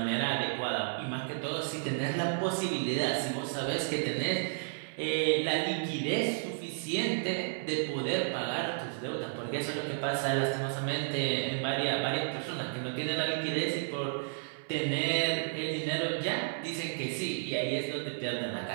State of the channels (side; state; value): left; silent; 56 dB below the other